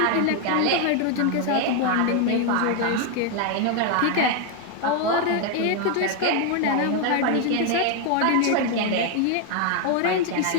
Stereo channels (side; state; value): both; different; correlation 0.01